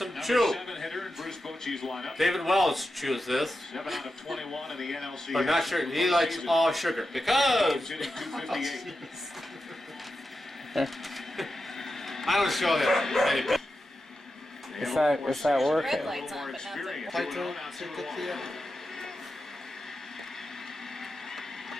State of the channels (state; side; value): normal; both; correlation 0.90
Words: Number chew? 7 hitter in Bruce Bochy's lineup. David Wells chews this, 7 out of 21 in the NLC. but not sugar. He likes all sugar He's because hitting 258. I don't show that many people. It's not working. Red lights on, but not the.